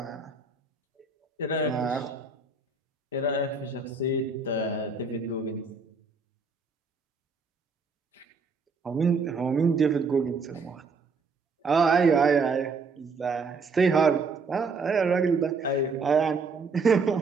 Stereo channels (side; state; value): left; quieter; 4.3 dB